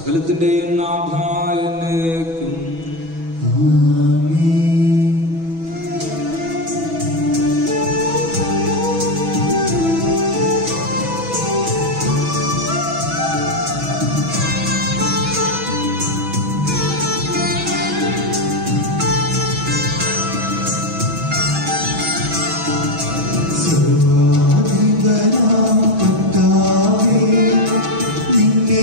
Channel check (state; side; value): late; left; 6.2 ms